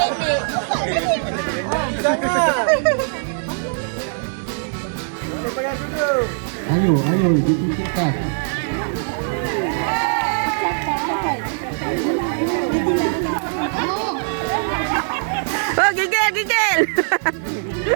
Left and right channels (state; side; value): silent; left; digital silence